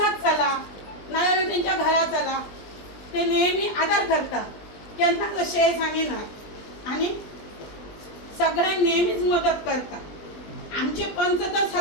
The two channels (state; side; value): late; right; 20 ms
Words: चला नाजाल्यार तेंच्या घरा चला ते नेहमी आदार करता केन्नाच अशें सांगिनात आनी सगळ्यांक नेहमीच मदत करता आमचे पंच तर